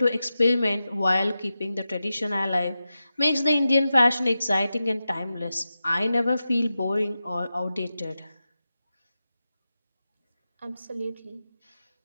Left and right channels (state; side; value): inverted; both; correlation -0.92